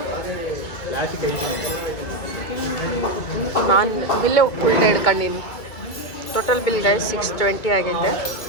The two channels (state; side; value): late; right; 2.2 ms